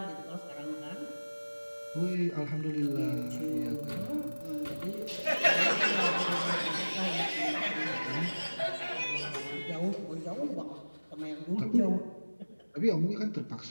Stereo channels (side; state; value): both; inverted; correlation -1.00